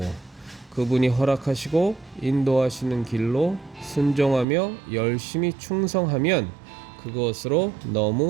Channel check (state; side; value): drops out; left; at 4.5 s